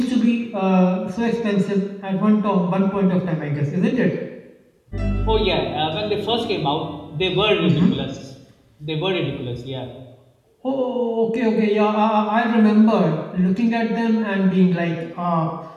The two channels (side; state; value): both; identical; correlation 1.00